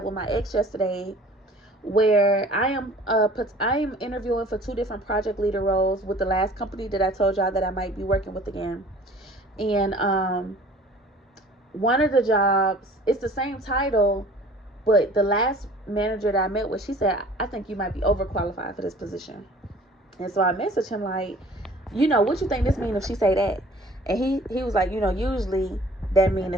with my ex yesterday, where I am interviewing for 2 different project leader roles with the last company that I told y'all that I might be working with again. And one of the jobs, it's the same title, but the last manager that I met with, she said, I think you might be overqualified for this position. And so I messaged him like, what you think this mean if she say that? And he was like, usually that mean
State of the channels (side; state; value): both; normal; correlation 0.49